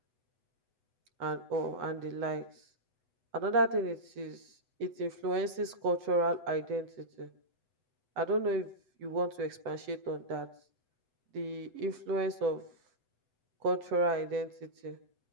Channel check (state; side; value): late; left; 8.0 ms